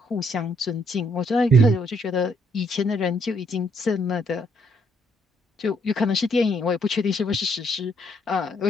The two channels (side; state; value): both; normal; correlation 0.71